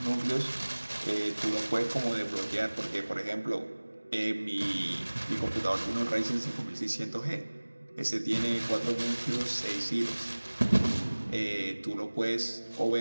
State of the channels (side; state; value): both; inverted; correlation -1.00